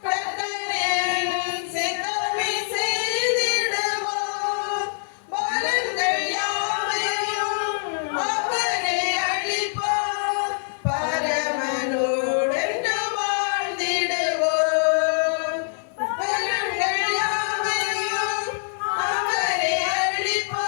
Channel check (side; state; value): right; silent; digital silence